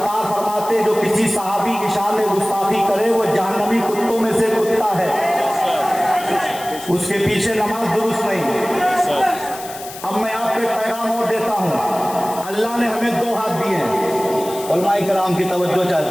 فرماتے جو کسی صحابی کی شان میں گستاخی کرے وہ جہنمی کتوں میں سے کتا ہے، اس کے پیچھے نماز درست نہیں۔ اب میں آپ کو ایک پیغام اور دیتا ہوں، اللہ نے ہمیں دو ہاتھ دیے ہیں، علماء کرام کی توجہ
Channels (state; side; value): noise; left; hiss, 14 dB below the sound